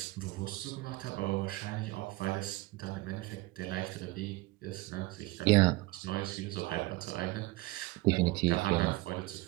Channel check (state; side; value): quieter; left; 20.3 dB